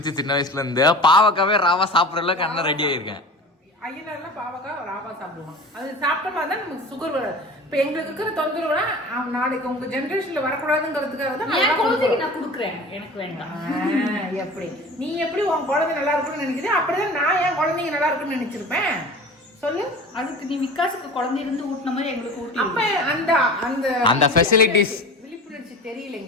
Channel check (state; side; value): normal; both; correlation 0.37